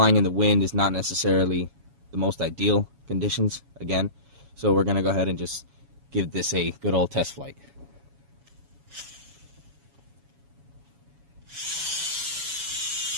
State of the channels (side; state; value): left; late; 7.2 ms